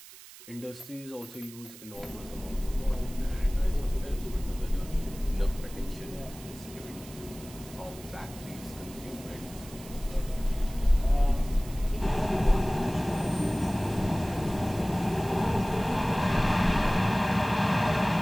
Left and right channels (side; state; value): right; noise; hiss, 18 dB below the sound